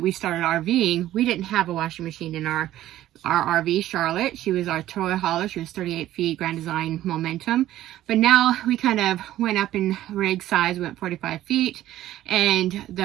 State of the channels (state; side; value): quieter; left; 13.8 dB